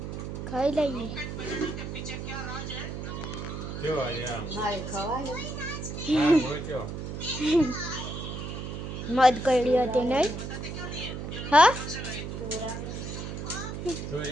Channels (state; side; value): noise; right; hum, 6 dB below the sound